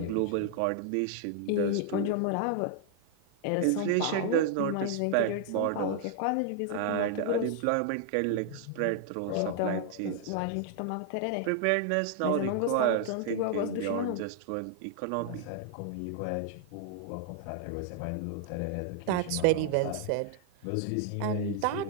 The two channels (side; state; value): both; different; correlation 0.00